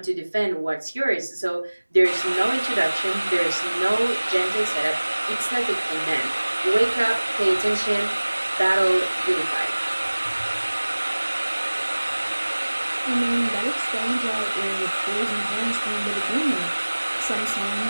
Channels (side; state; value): both; inverted; correlation -1.00